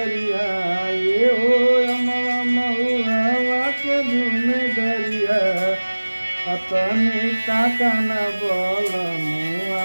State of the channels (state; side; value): inverted; both; correlation -1.00